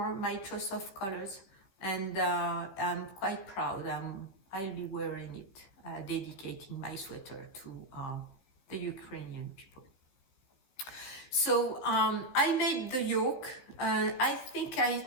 my choice of colors, and I'm quite proud. I'll be wearing it, dedicating my sweater to the Ukrainian people. So I made the yoke. I think I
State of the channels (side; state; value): right; late; 15 ms